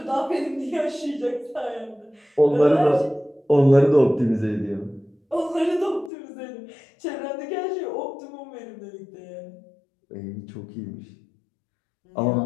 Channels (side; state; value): right; drops out; at 6.1 s